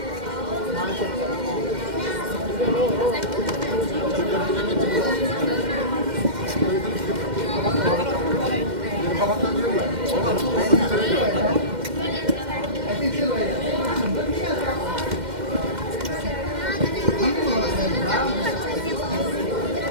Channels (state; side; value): late; left; 2.1 ms